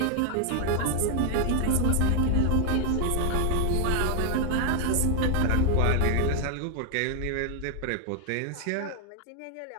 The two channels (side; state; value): both; different; correlation 0.00